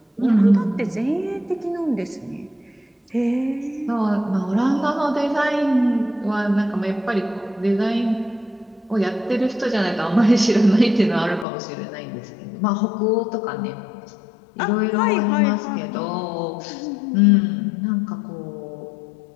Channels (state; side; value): drops out; right; at 11.5 s